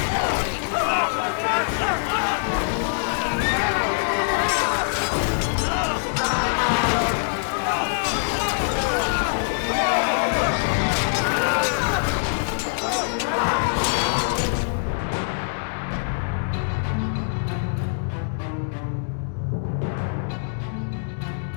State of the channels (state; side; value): silent; right; digital silence